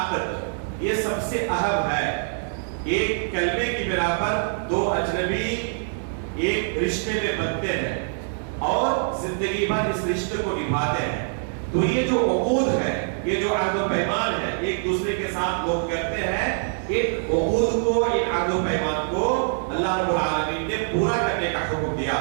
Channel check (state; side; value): silent; left; digital silence